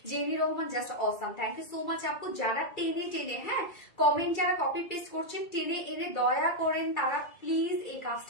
Jemi Rahman, just awesome, thank you so much আপু। যারা টেনে টেনে, হ্যাঁ, কমেন্ট যারা কপি পেস্ট করছেন টেনে এনে দয়া করেন, তারা প্লিজ এই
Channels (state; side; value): late; right; 2.3 ms